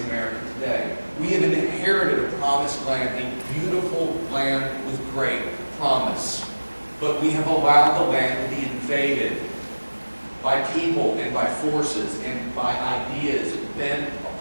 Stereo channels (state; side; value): inverted; both; correlation -1.00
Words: America today. We have inherited a promised land, a beautiful land with great promise. But we have allowed the land to be invaded by people and by forces and by ideas bent